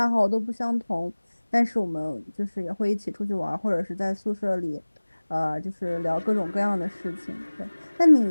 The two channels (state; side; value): inverted; both; correlation -1.00